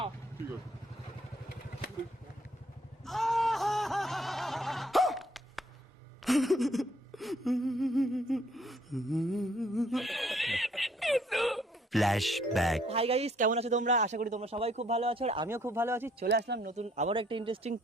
ঠিক আছে। ফ্ল্যাশব্যাক। হাই গাইস, কেমন আছো তোমরা? আশা করি তোমরা সবাই খুব ভালো আছো আর আমিও খুব ভালো আছি। চলে আসলাম নতুন আবার একটা ইন্টারেস্টিং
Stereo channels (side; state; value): both; normal; correlation 0.65